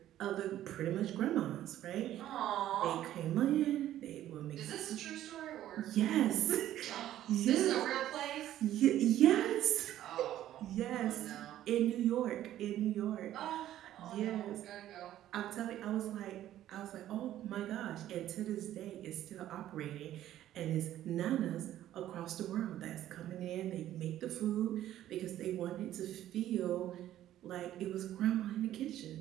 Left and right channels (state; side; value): quieter; left; 12.7 dB